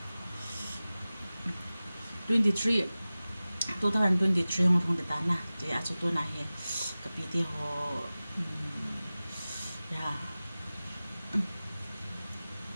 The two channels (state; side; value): inverted; both; correlation -0.97